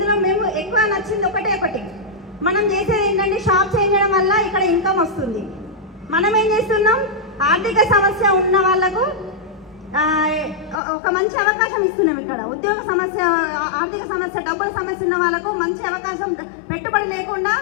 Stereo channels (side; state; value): right; drops out; at 10.8 s